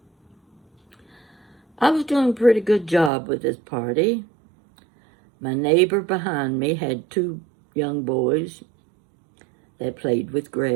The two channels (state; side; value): drops out; left; at 3.1 s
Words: I was doing a pretty good job with this party. My neighbor behind me had two young boys that played with